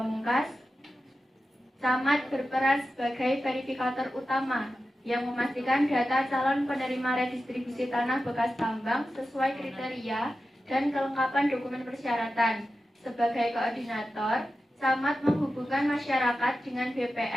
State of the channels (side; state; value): both; normal; correlation 0.93